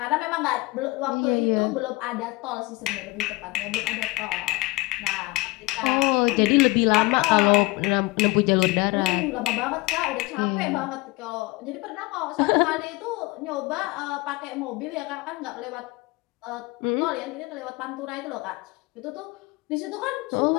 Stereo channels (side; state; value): right; quieter; 22.8 dB